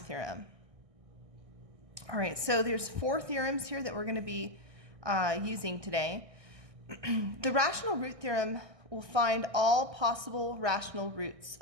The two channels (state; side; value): late; left; 1.6 ms